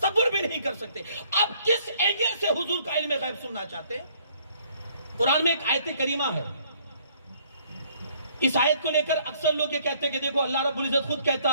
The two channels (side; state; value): both; inverted; correlation -0.62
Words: بھی نہیں کر سکتے۔ اب کس اینگل سے حضور کا علم غیب سننا چاہتے ہیں؟ قرآن میں ایک آیت کریمہ ہے، اس آیت کو لے کر اکثر لوگ یہ کہتے ہیں کہ دیکھو اللہ رب العزت خود کہتا